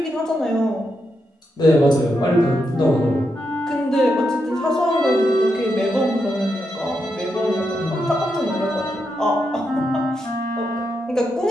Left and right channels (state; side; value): normal; both; correlation 0.83